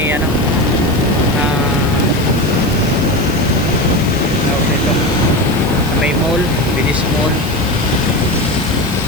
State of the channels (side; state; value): left; noise; hiss, 16 dB below the sound